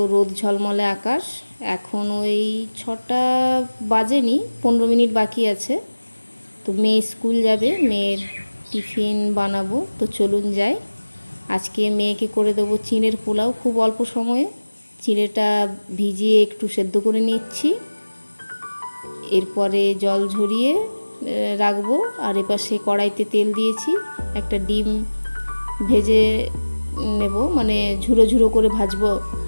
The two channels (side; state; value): both; inverted; correlation -1.00